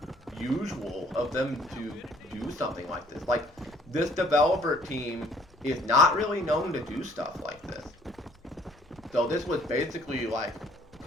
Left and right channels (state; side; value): normal; both; correlation 0.59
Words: usual of them to do something like this. Like, this developer team is not really known to do stuff like this. So this was basically like